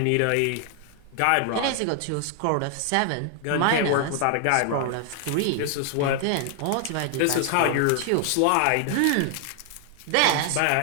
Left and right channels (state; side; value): different; both; correlation 0.00